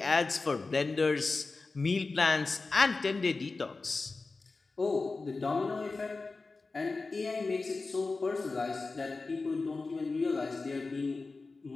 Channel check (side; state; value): right; quieter; 3.8 dB